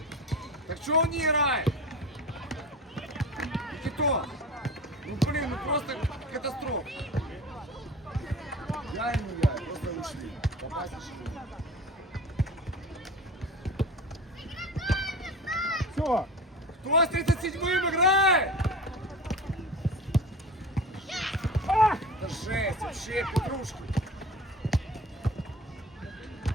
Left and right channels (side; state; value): both; normal; correlation 0.35